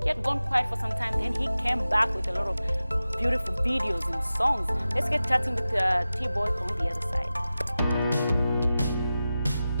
He had gone quiet for some time, then he came back with a lot of beautiful videos and songs. Let's get chatting with T Bwoy on the other side.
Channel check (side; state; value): both; inverted; correlation -0.94